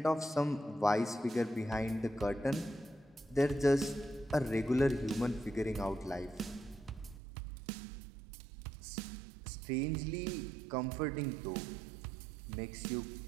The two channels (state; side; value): drops out; left; at 7.2 s